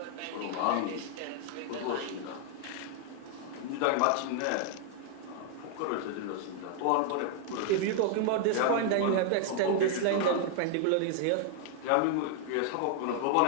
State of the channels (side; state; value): both; different; correlation 0.00